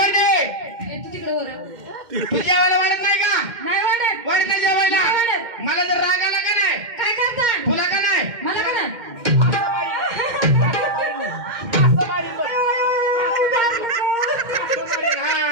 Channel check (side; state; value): left; late; 2.1 ms